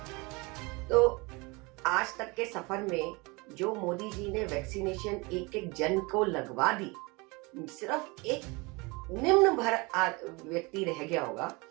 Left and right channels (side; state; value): left; quieter; 26.4 dB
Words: तो आज तक के सफर में जो मोदी जी ने वैक्सीनेशन एक एक जन को लगवा दी, सिर्फ एक निम्न भर व्यक्ति रह गया होगा,